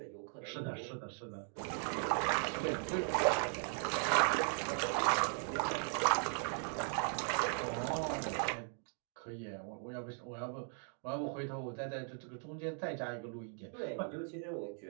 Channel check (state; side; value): silent; left; 52 dB below the other